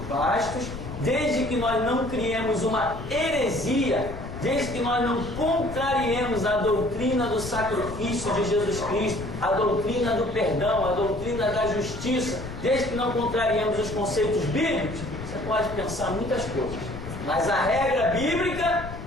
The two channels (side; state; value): left; noise; rumble, 10 dB below the sound